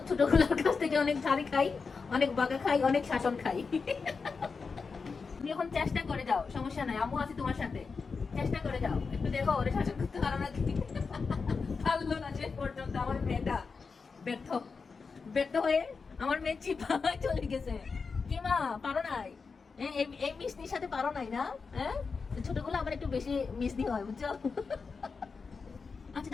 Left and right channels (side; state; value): right; quieter; 4.9 dB